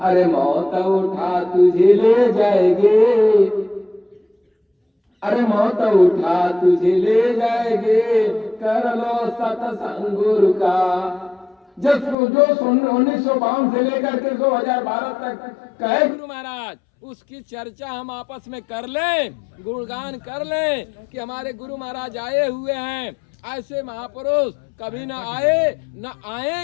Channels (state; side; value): drops out; right; at 12.2 s